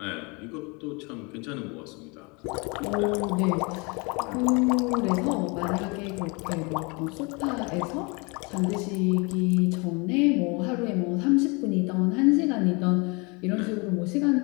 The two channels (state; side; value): quieter; right; 29.5 dB